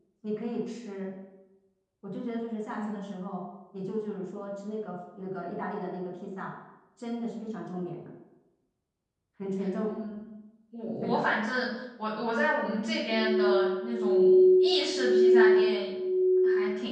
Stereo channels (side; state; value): both; identical; correlation 1.00